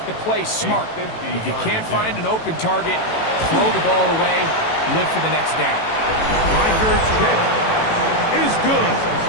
to play smart. If you can't find an open target, throw the ball away, live for the next down. Reichert's kick is good.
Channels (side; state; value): right; late; 18 ms